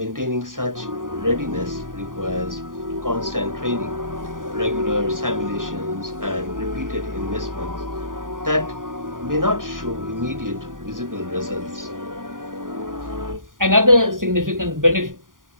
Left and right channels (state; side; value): late; left; 0.89 ms